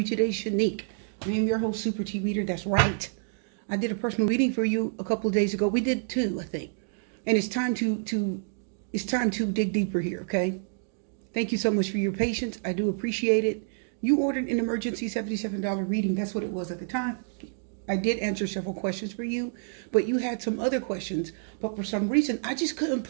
today, Shanique? I am your host, Super T Reader. That's right. I did a personal reading for you a couple of days ago. We did two, I think. And it's time to dig deeper here, okay? Thank you so much for your patience. I do appreciate it. You ordered an emergency $77 reading. That's what it was at the time. I did answer several questions for you, but you had some other questions. But for some reason, I just couldn't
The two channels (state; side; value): silent; left; digital silence